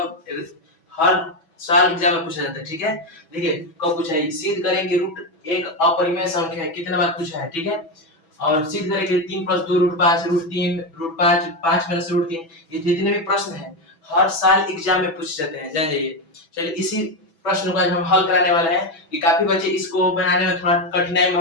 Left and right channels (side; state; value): right; late; 6.1 ms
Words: हर साल एग्जाम में पूछा जाता है। ठीक है, देखिए कब पूछा है। सिद्ध करें कि रूट एक अपरिमेय संख्या है, कितने बार पूछा है। ठीक है, और सिद्ध करें कि 3 + 2 √5 √3 √5 5 - √3, ये जितने भी प्रश्न हैं हर साल एग्जाम में पूछे जाते हैं, जान जाइए। चलिए इसी प्रश्न को आज हम हल कराने वाले हैं कि काफी बच्चे इसको बनाने में थोड़ा कठिनाई